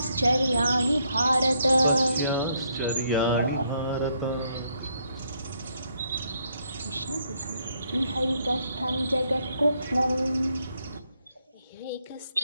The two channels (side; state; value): both; inverted; correlation -0.74